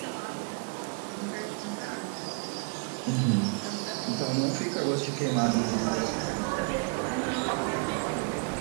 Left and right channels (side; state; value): left; quieter; 35.3 dB